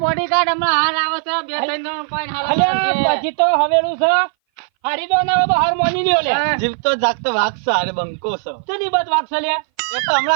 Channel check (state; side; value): silent; left; 60 dB below the other